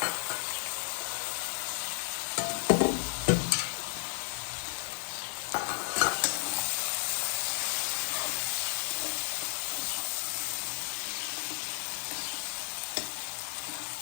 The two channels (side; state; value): right; silent; digital silence